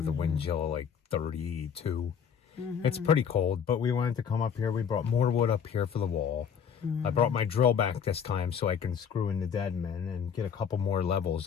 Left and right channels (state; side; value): quieter; right; 7.4 dB